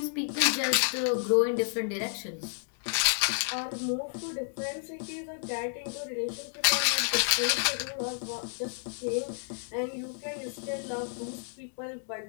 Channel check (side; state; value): right; silent; digital silence